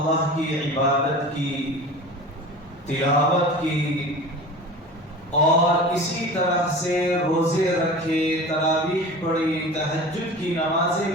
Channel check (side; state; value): both; normal; correlation 0.36